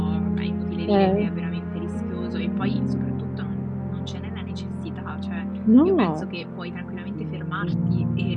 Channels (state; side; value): identical; both; correlation 1.00